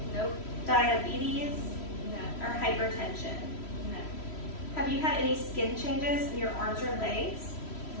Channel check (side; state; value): right; late; 3.1 ms